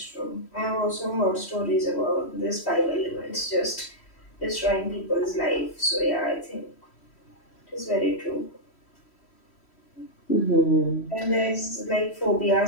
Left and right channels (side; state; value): right; late; 3.1 ms